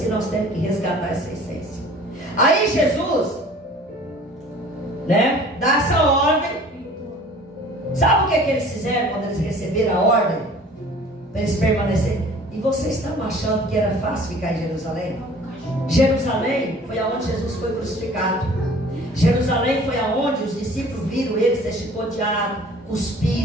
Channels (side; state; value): both; normal; correlation 0.48